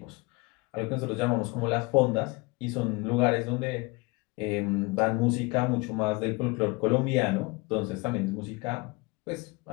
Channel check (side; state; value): right; quieter; 25.8 dB